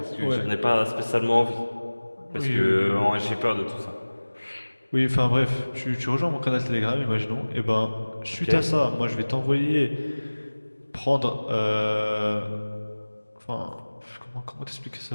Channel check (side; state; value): both; inverted; correlation -1.00